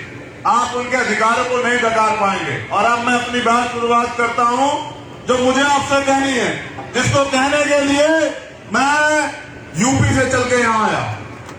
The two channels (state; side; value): identical; both; correlation 1.00